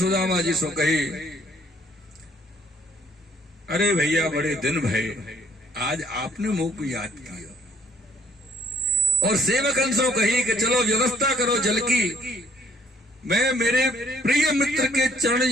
जी से कही, अरे भैया बड़े दिन भय, आज आपने मुंह को याद किया। और सेवकन से कही कि चलो व्यवस्था करो जल की, मैं मेरे प्रिय मित्र के चरण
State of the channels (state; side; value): normal; both; correlation 0.63